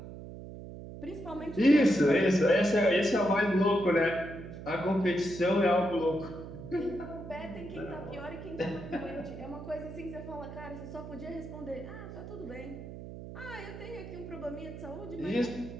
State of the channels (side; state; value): right; noise; hum, 12 dB below the sound